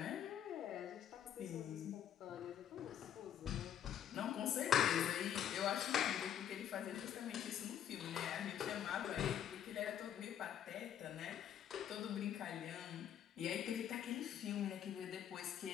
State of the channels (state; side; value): quieter; right; 9.8 dB